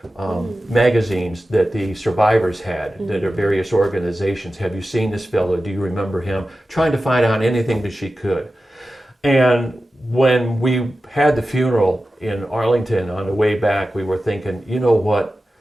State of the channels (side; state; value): both; normal; correlation 0.93